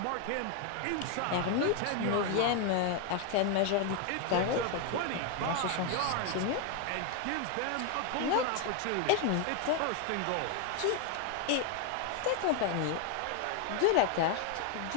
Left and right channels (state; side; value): different; both; correlation 0.01